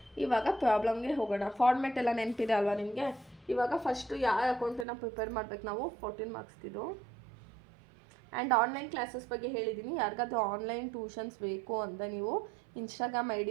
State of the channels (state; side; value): drops out; left; at 4.9 s